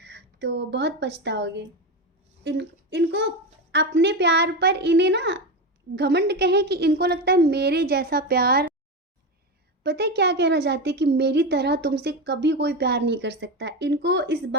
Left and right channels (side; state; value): both; normal; correlation 0.17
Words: तो बहुत पछताओगे। इनको अपने प्यार पर इन्हें ना घमंड कहें कि इनको लगता है मेरे जैसा प्यार, पता है क्या कहना चाहते हैं कि मेरी तरह तुमसे कभी कोई प्यार नहीं कर सकता। इनको इस